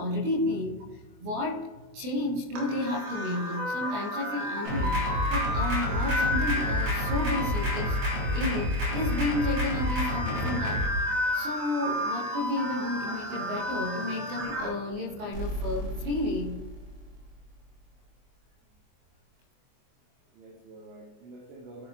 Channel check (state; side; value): late; left; 24 ms